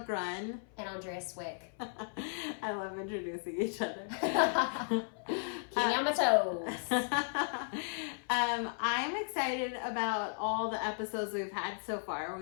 Grunn And Andrea Cwik. I love introducing each other. Keep me on my toes. I'm excited about all the episodes we've had so far.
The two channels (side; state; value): right; silent; 54 dB below the other